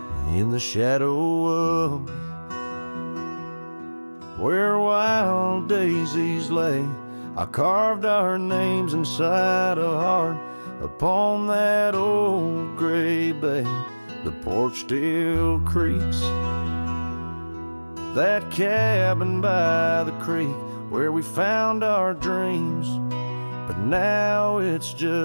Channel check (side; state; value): both; inverted; correlation -1.00